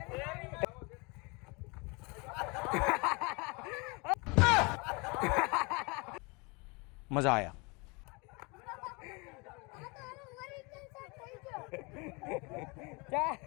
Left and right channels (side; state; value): right; quieter; 28.9 dB